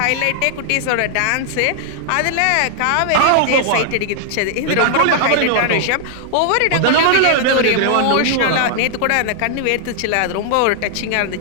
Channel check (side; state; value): both; different; correlation -0.01